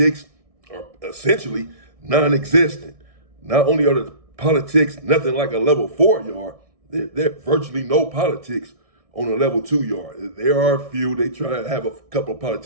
are essentially non-existent. Not only are the politics nothing like a level 4 yard, there's virtually no politics on a level 2 yard. There are a few, they try to have a couple of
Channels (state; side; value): late; left; 1.6 ms